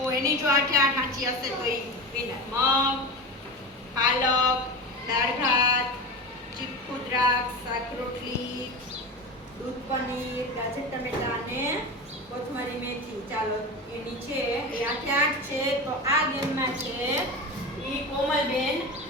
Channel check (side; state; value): both; normal; correlation 0.26